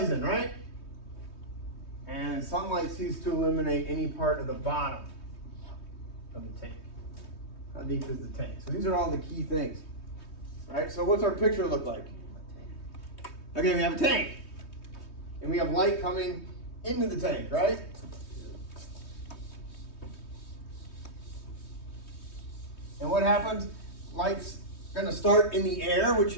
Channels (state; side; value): late; right; 3.2 ms